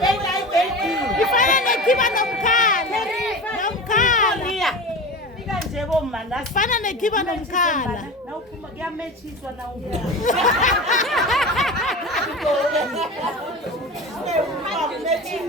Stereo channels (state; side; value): normal; both; correlation 0.30